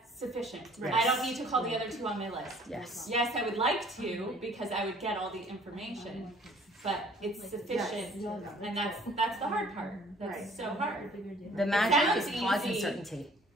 sufficient. I don't need to call the other 2 on my list. Yes, I would like to because I would get all the information, but it's sufficient, and that's the hard part. That's so hard. The magic is pause and certainty.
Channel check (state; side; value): normal; both; correlation 0.55